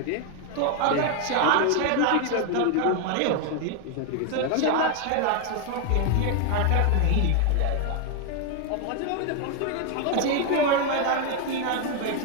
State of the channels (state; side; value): different; both; correlation 0.01